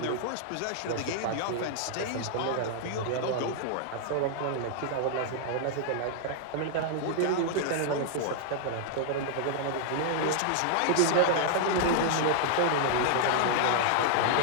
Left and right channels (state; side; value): different; both; correlation -0.01